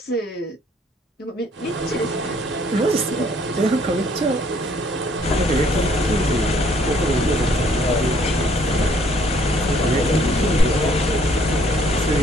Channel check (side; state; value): both; normal; correlation 0.63